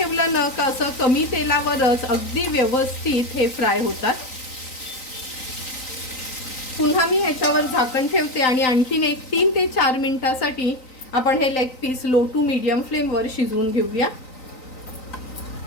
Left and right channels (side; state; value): right; late; 3.9 ms